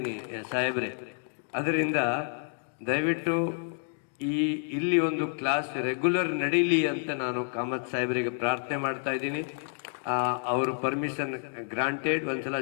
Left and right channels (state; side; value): silent; right; 58 dB below the other